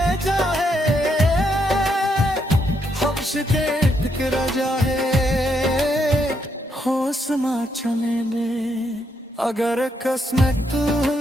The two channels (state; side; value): normal; both; correlation 0.77